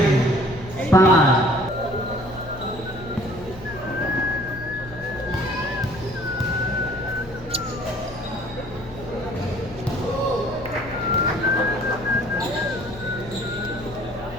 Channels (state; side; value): noise; left; hum, 16 dB below the sound